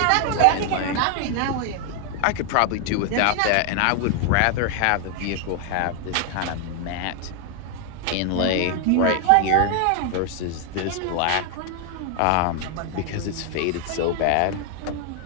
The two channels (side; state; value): both; different; correlation 0.00